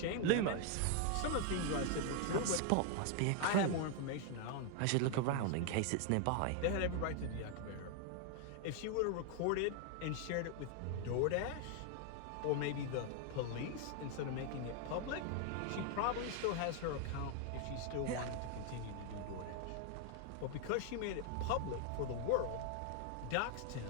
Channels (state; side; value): different; both; correlation 0.00